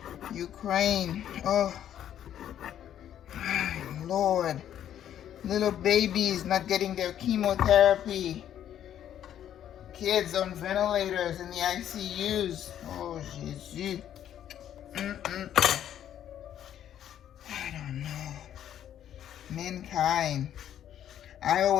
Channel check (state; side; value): quieter; right; 10.5 dB